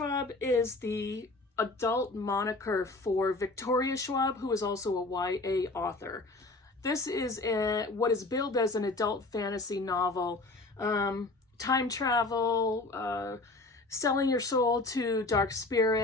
is the adult moniker for Victoria Schwab, who is also a YA author. This is what is billed as an adult fantasy novel. Time travel, selling your soul to dark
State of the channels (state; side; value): quieter; right; 3.1 dB